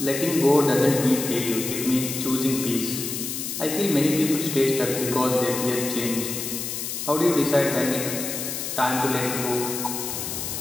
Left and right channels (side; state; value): left; noise; hiss, 5 dB below the sound